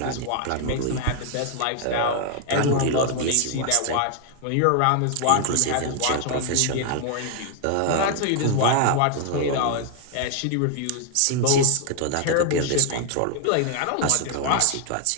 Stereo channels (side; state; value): both; different; correlation 0.00